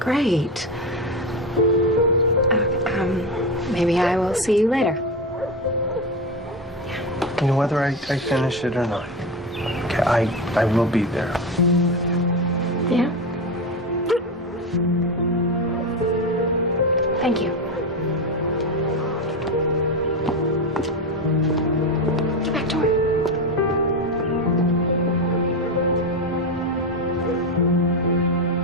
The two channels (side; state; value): both; normal; correlation 0.16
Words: Maybe I will see you later. Whether I finish it or not. Okay, I will be there. Yeah? Thank you. Get back to it.